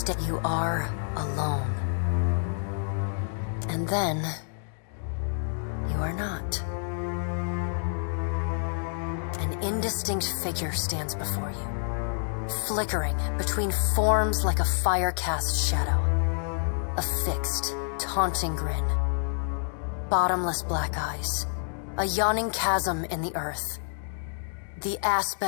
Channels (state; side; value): silent; right; digital silence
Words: are alone. And then you are not. An indistinct figure stands before you, flickering between forms like a fire-cast shadow. A fixed, taunting grin. Bottomless black eyes. A yawning chasm in the earth. The